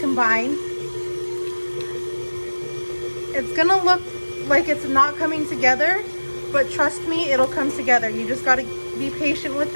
combined. It's gonna look like it's not coming together, but trust me, it'll come together. You just gotta be patient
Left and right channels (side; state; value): both; inverted; correlation -1.00